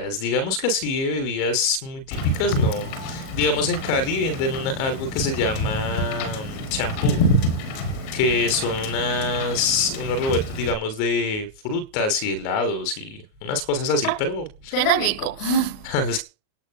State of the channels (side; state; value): right; late; 37 ms